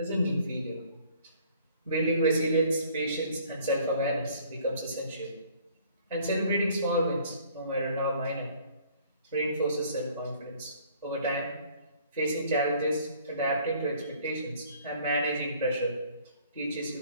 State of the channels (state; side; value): inverted; both; correlation -0.56